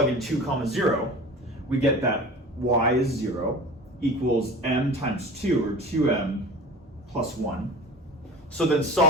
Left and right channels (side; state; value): both; normal; correlation 0.37